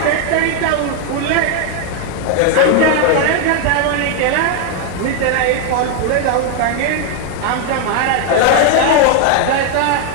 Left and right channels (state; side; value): different; both; correlation 0.01